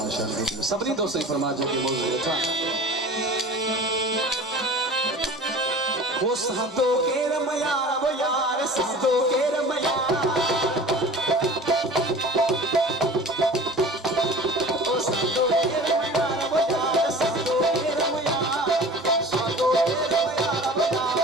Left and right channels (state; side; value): normal; both; correlation 0.40